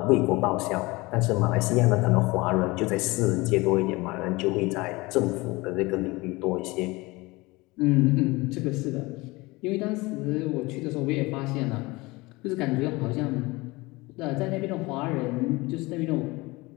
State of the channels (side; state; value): right; quieter; 22.8 dB